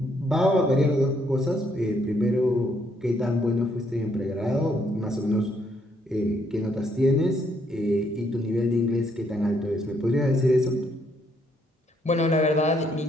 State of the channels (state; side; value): normal; both; correlation 0.71